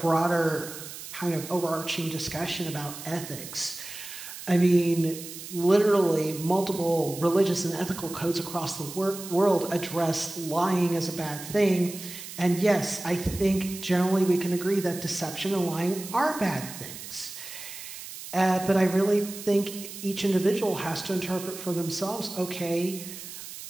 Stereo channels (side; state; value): right; noise; hiss, 12 dB below the sound